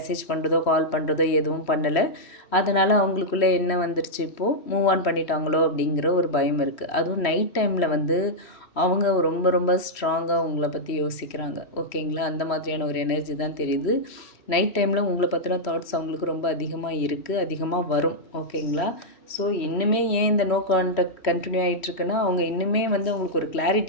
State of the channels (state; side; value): late; right; 3.1 ms